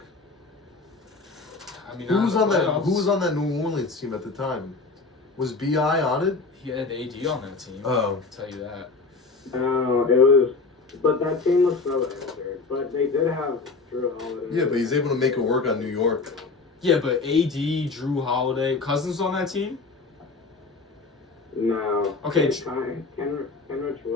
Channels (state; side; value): quieter; right; 4.0 dB